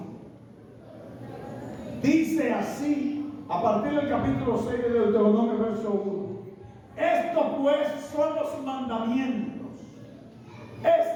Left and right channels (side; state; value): both; identical; correlation 1.00